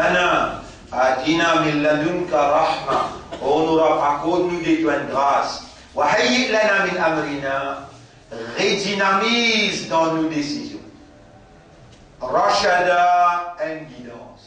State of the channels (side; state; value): both; identical; correlation 1.00